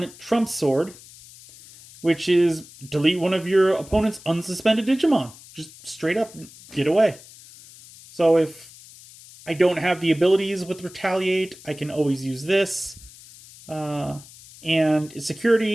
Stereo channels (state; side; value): noise; left; hiss, 20 dB below the sound